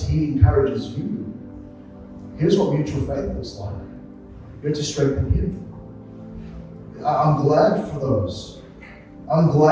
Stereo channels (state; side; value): identical; both; correlation 1.00